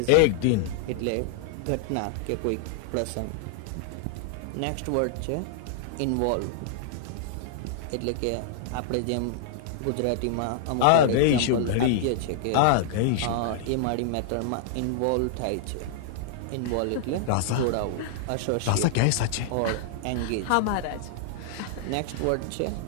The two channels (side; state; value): both; different; correlation -0.01